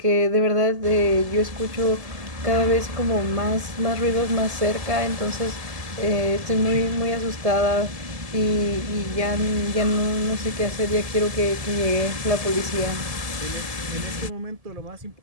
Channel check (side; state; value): left; late; 1.7 ms